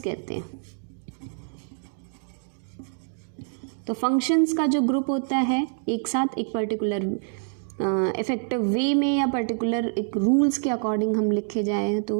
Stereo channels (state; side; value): silent; left; digital silence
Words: हैं। तो फंक्शंस का जो ग्रुप होता है एक साथ एक पर्टिकुलर इफेक्टिव वे में या पर्टिकुलर एक रूल्स के अकॉर्डिंग हम लिखे जाए